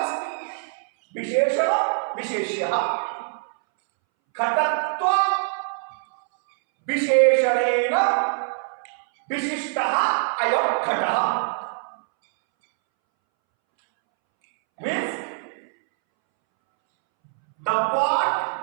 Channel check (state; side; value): silent; left; 63 dB below the other